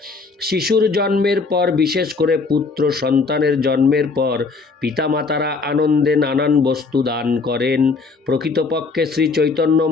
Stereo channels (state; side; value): quieter; right; 4.3 dB